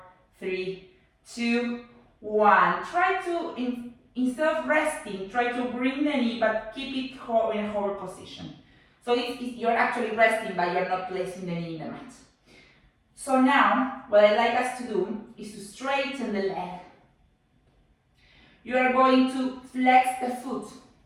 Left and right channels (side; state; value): both; identical; correlation 1.00